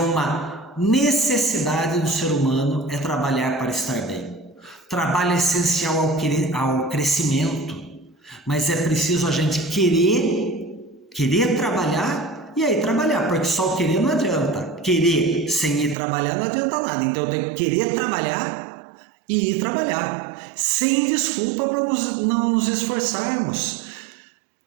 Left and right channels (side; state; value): left; drops out; at 16.0 s